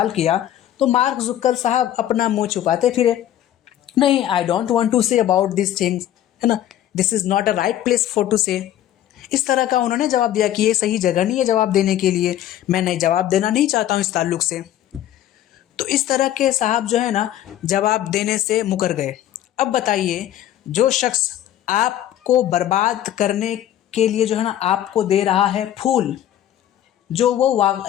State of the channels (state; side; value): quieter; right; 12.0 dB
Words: किया, तो मार्क जुकर साहब अपना मुंह छुपाते फिरे, नहीं, I don't want to say about this things, है ना, this is not a right place for to say. इस तरह का उन्होंने जवाब दिया कि ये सही जगह नहीं है जवाब देने के लिए, मैं नहीं जवाब देना नहीं चाहता हूँ इस ताल्लुक से। तो इस तरह के साहब जो है ना जवाब देने से मुकर गए। अब बताइए, जो शख्स आपको बर्बाद करने के लिए जो है ना आपको दे रहा है फूल,